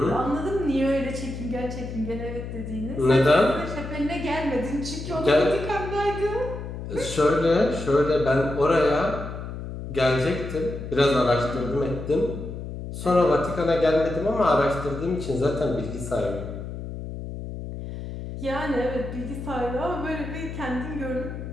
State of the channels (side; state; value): left; noise; hum, 8 dB below the sound